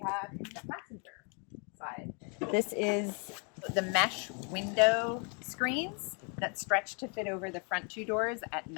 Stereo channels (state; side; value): quieter; right; 36.7 dB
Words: in the passenger side. This is the mesh window screens that stretch to fit over the front two doors at